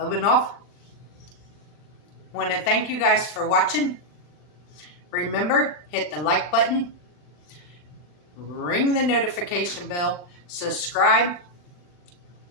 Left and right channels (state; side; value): late; right; 40 ms